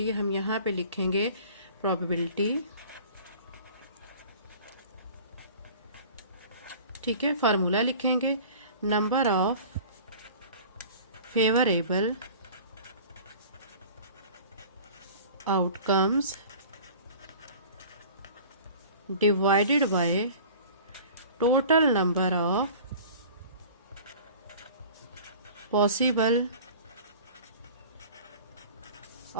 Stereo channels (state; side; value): inverted; both; correlation -0.43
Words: हम यहाँ पे लिखेंगे प्रोबेबिलिटी, ठीक है। फार्मूला लिखेंगे number of favourable outcomes divided by total number of possible